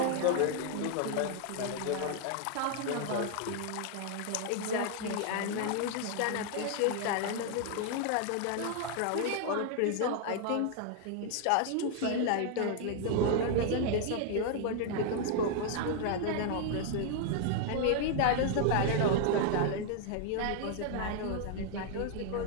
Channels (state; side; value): different; both; correlation 0.00